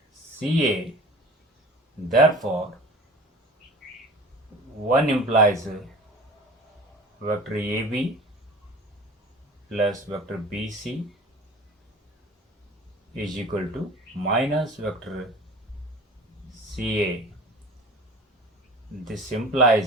CA, therefore 1 implies vector AB plus vector BC is equal to minus vector CA. This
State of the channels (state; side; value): normal; both; correlation 0.41